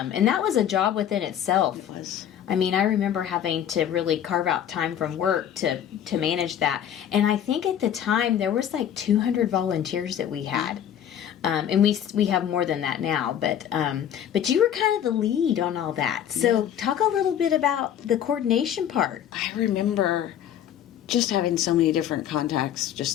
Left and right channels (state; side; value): quieter; right; 9.9 dB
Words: that was a job within itself. It was. I mean, I remember having to really carve out time from work to manage that. And I think at the time there was like 200 volunteers that we had. And we have more than that now, but you were kind of the lead on all that. So talk a little bit about the coordination part. I remember just having so many different contacts